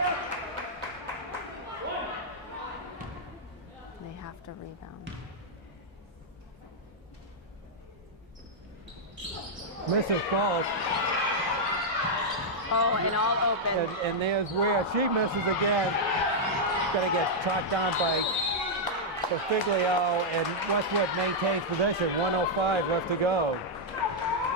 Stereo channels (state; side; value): normal; both; correlation -0.05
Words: They have to rebound. Misses both. Oh, and all open. And there's Ware. She misses again. Gonna get tracked down by Figlio, and Westwood maintains possession. 1:05 left to go.